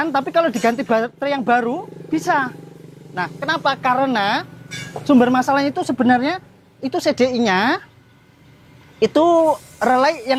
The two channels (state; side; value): identical; both; correlation 1.00